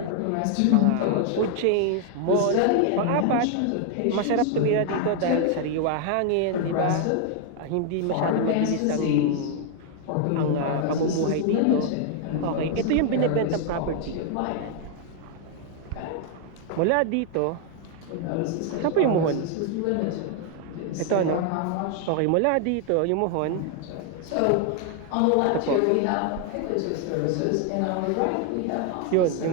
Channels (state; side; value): different; both; correlation 0.00